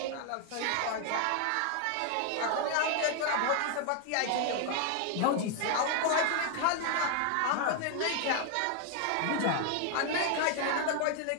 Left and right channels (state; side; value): different; both; correlation 0.00